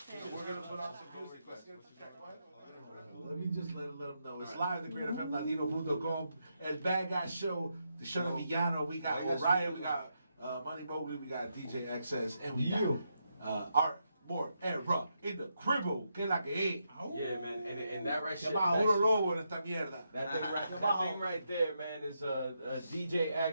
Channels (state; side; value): inverted; both; correlation -0.82